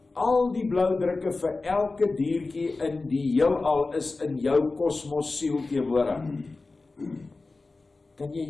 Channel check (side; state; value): right; quieter; 3.6 dB